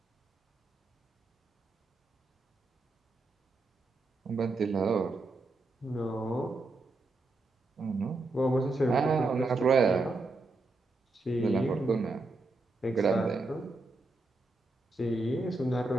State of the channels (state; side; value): quieter; left; 3.3 dB